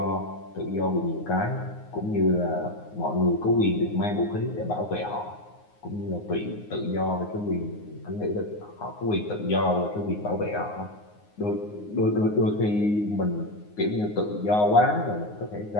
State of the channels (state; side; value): late; right; 9.6 ms